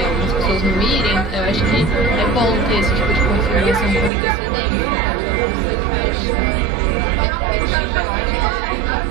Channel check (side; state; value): left; drops out; at 4.1 s